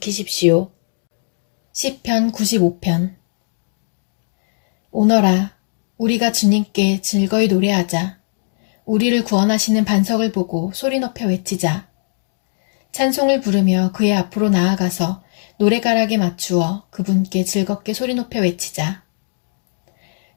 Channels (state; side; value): silent; right; digital silence